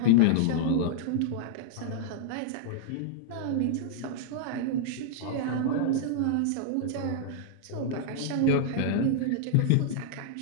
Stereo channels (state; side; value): different; both; correlation -0.01